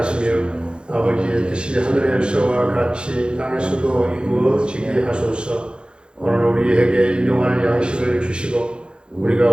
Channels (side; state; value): left; late; 0.053 ms